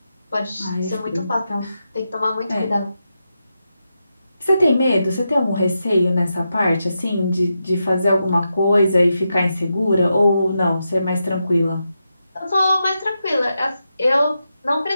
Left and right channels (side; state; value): both; inverted; correlation -0.87